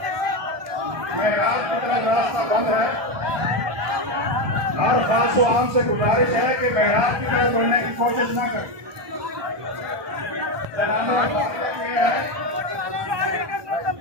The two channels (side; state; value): left; late; 1.2 ms